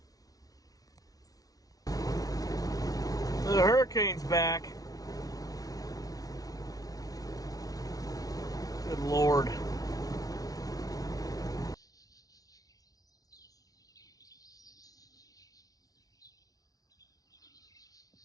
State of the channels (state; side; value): late; right; 0.18 ms